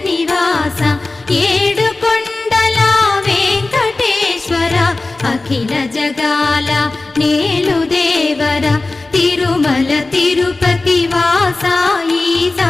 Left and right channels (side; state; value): right; quieter; 3.2 dB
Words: నివాస ఏడు కొండల వెంకటేశ్వర అఖిల జగాల నేలు దేవర తిరుమల తిరుపతి వాస ఈసా